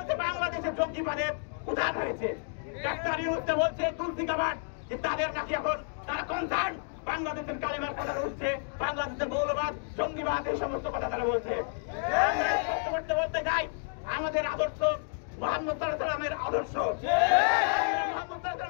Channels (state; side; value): silent; right; 57 dB below the other